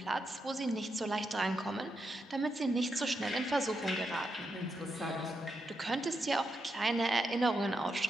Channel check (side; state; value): both; normal; correlation 0.84